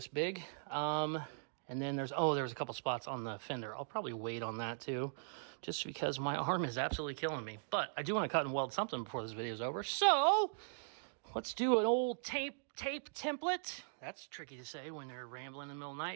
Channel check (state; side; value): silent; left; digital silence